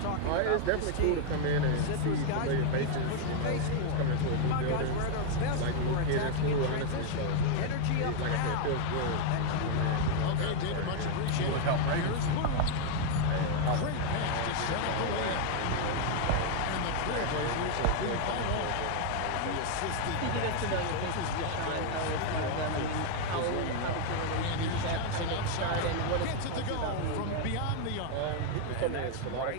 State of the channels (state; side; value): different; both; correlation 0.01